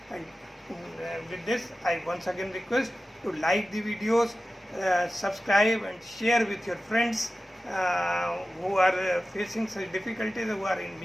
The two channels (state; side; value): normal; both; correlation 0.94